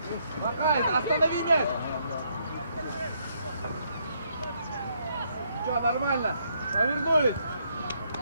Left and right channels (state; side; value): inverted; both; correlation -0.73